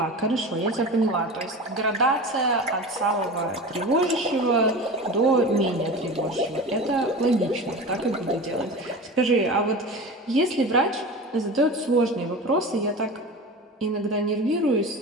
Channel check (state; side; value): normal; both; correlation 0.31